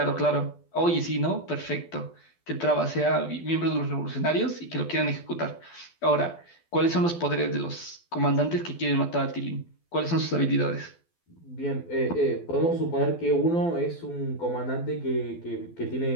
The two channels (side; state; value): right; late; 12 ms